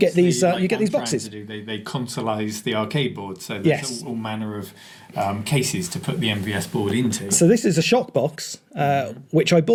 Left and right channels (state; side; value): identical; both; correlation 1.00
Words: these, obviously, you get I'm these trying boxes. to do. They consoleise the arcade board, so there's Yes. all manner of cases to put the MVS board into. So this is a shock box, which I